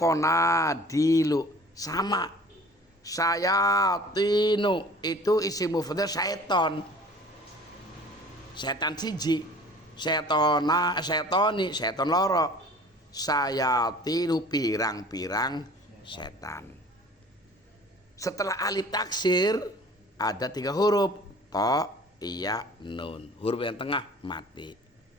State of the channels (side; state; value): both; normal; correlation 0.47